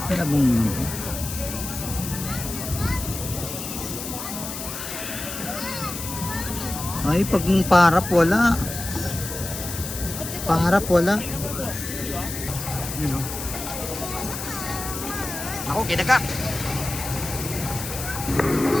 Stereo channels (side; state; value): left; noise; hiss, 7 dB below the sound